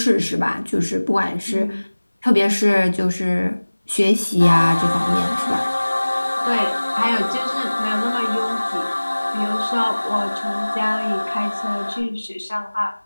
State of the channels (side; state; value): both; inverted; correlation -1.00